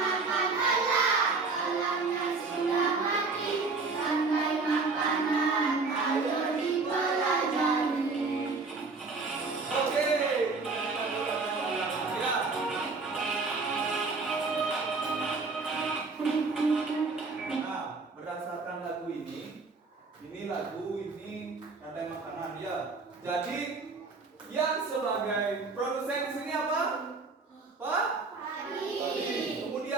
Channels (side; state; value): left; quieter; 4.1 dB